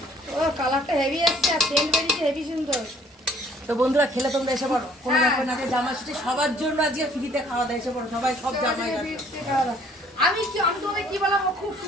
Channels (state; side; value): normal; both; correlation 0.58